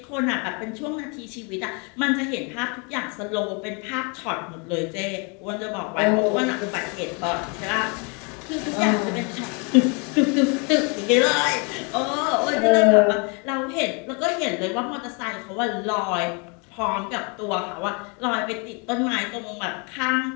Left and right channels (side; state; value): right; quieter; 33.8 dB